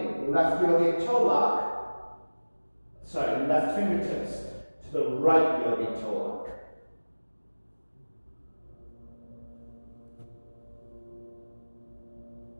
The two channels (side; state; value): both; inverted; correlation -1.00